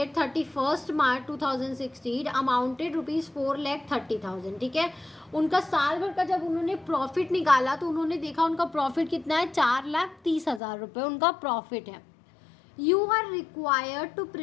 31 March 2016 amounted ₹4,30,000। ठीक है, उनका साल भर का जब उन्होंने प्रॉफिट निकाला तो उन्होंने देखा उनका प्रॉफिट कितना है? 4,30,000 रुपये उनका प्रॉफिट है। You are required to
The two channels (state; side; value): drops out; right; at 10.6 s